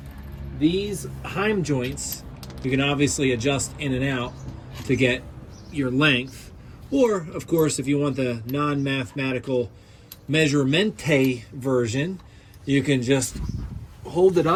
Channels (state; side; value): identical; both; correlation 1.00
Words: these heim joints, you can obviously adjust in and out to get your length. Or, of course, if you want the non-mathematical measurement version, you can just hold it